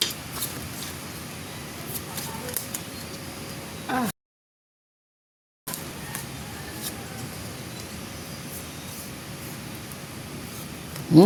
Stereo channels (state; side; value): identical; both; correlation 1.00